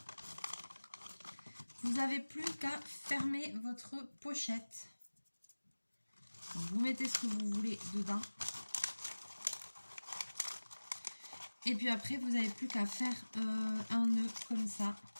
vous n'avez plus qu'à fermer votre pochette. Donc, vous mettez ce que vous voulez dedans. Et puis après, vous n'avez plus qu'à faire un nœud comme ça.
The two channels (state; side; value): inverted; both; correlation -1.00